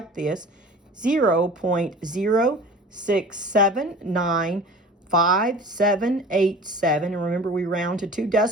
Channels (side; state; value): both; normal; correlation 0.41